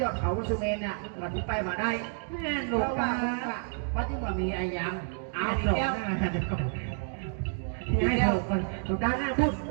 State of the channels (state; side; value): silent; left; 58 dB below the other